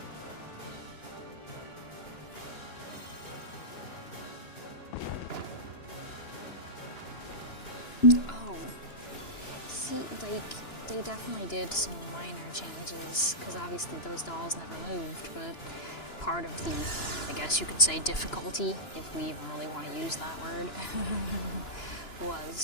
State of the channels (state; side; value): late; right; 2.9 ms